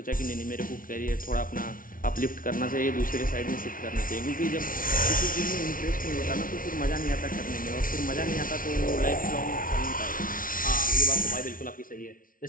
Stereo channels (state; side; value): late; right; 0.40 ms